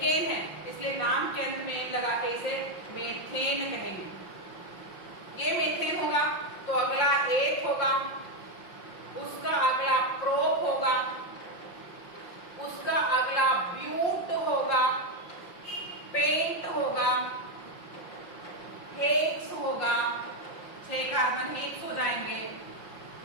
है इसलिए नाम के अंत में लगा के इसे मेथेन कहेंगे। ये मेथेन होगा तो अगला एक होगा, उसका अगला प्रोप होगा, उसका अगला ब्यूट होगा, पेंट होगा, हेक्स होगा। 6 कार्बन हेक्स हो जाएंगे।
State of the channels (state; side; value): late; right; 5.7 ms